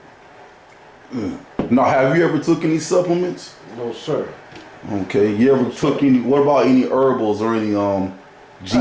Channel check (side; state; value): both; identical; correlation 1.00